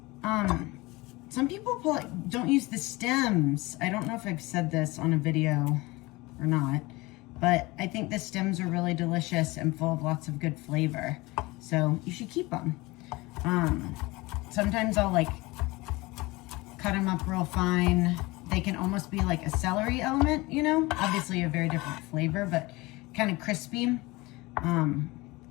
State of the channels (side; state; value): right; quieter; 22.2 dB